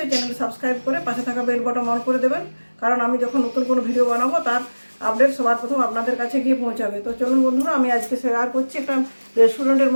চ্যানেলটি সাবস্ক্রাইব করে পাশে থাকা বেল বাটন অন করে দেবেন, কারণ আমি যখন নতুন কোনো ভিডিও বানাবো তার আপডেট সবার প্রথম আপনাদের কাছে গিয়ে পৌঁছাবে। তো চলুন বন্ধুরা, আমি আজকে শেয়ার করছি একটা রেস্টুরেন্টের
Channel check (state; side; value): inverted; both; correlation -1.00